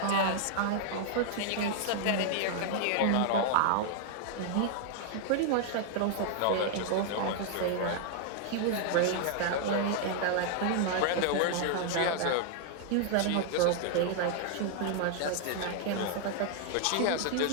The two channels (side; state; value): both; different; correlation 0.00